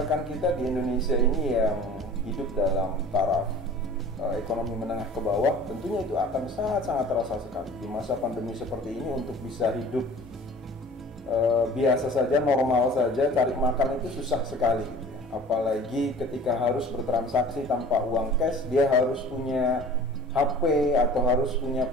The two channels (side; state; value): both; normal; correlation 0.44